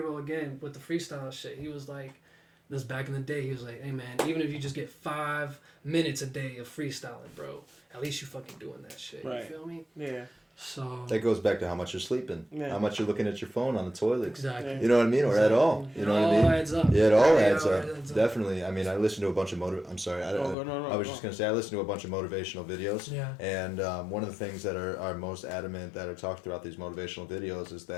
again with the freestyle shit. He was like, this back in the day, he was like, hey man, even if you just get 5 minutes a day of freestyling, bro, at least you fucking doing that shit. Right. You feel me? Yeah. So That goes back to how much you're sleeping, how much you're looking at your phone on the toilet. exactly. You know what I mean? Or at all. You know what I mean? It all adds up. Yeah, it all Yeah, adds it up. adds up. Definitely. I mean, I listen to a bunch of I'm sorry. I was just going to say, I listen to a bunch of motivational videos. Yeah. And one of the things that are most adamant that are talked throughout these motivational videos is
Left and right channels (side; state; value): right; drops out; at 20.6 s